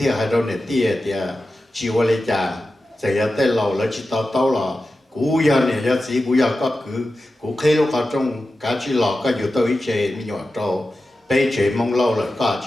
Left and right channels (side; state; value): both; normal; correlation 0.93